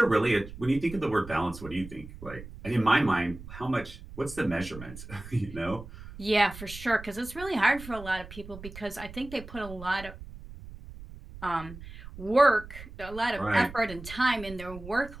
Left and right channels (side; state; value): right; noise; rumble, 14 dB below the sound